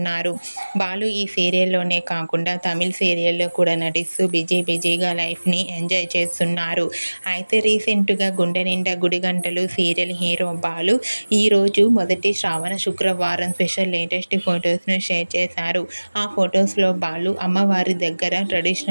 బాలు ఈ సీరియల్లోనే కాకుండా తమిళ్ సీరియల్లో కూడా నటిస్తూ బిజీగా లైఫ్ని ఎంజాయ్ చేస్తున్నారు. అయితే రీసెంట్గా గుండె నిండా గుడిగంటలు సీరియల్ హీరో బాలు ఈరోజు మొదటి శ్రావణ శుక్రవారం స్పెషల్ లేటెస్ట్ ఫొటోస్ను షేర్ చేశారు. ఆ ఫొటోస్లో బాలు అమ్మవారి దగ్గర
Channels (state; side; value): inverted; both; correlation -1.00